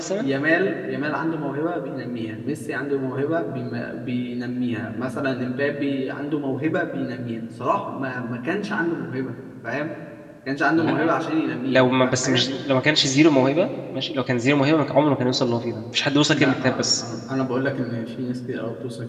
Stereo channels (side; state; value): both; identical; correlation 1.00